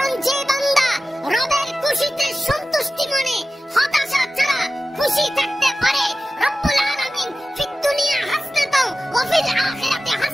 যে বান্দা রবের খুশিতে সন্তুষ্টি মনে হতাশা ছাড়া খুশি থাকতে পারে, রব্বুল আলামিন ফিদ দুনিয়া হাসনাতাও ওয়া ফিল আখিরাতি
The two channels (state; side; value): normal; both; correlation 0.95